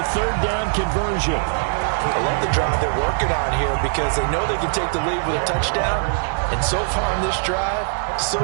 down conversion. I love the drive they're working on here because they know they can take the lead with a touchdown. And so far on this drive, so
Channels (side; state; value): left; silent; digital silence